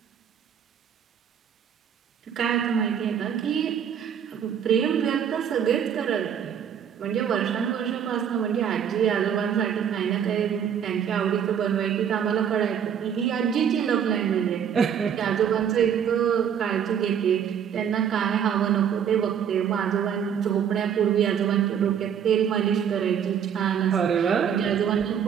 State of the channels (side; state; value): left; quieter; 8.4 dB